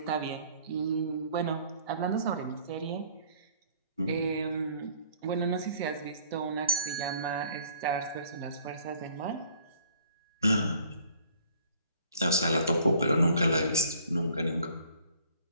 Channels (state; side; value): inverted; both; correlation -0.57